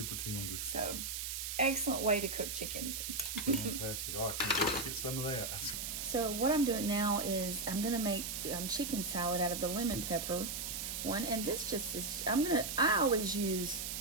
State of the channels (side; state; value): right; noise; hiss, 4 dB below the sound